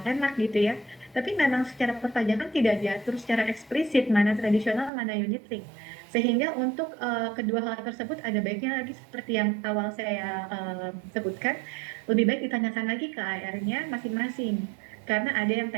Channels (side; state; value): left; drops out; at 4.9 s